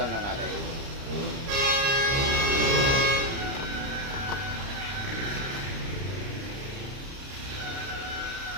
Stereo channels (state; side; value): late; left; 30 ms